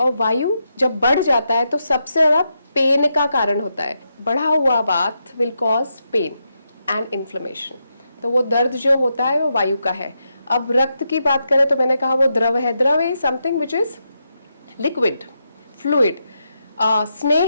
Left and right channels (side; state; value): both; inverted; correlation -0.84